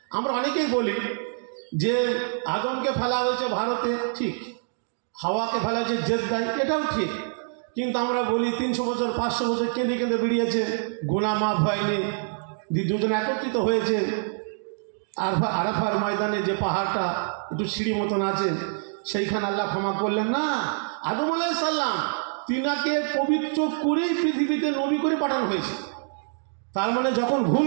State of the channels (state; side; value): silent; left; digital silence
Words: আমরা অনেকেই বলি যে আদমকে ফেলা হয়েছে ভারতে, ঠিক। হাওয়াকে ফেলা হয়েছে জেদ্দায়, এটাও ঠিক। কিন্তু আমরা বলি 300 বছর 500 বছর কেঁদে কেঁদে বেরিয়েছে, গুনাহ মাফ হয়নি, দুজন একত্রিত হয়েছে। আরাফার ময়দানে যে পাহাড়টা একটু সিঁড়ি মতন আছে, সেইখানে আল্লাহ ক্ষমা করলেন না। আদম আলাইহিস সালাম তিনাকে পবিত্র করেই পৃথিবীতে নবী করে পাঠানো হয়েছে। তার মানে যখন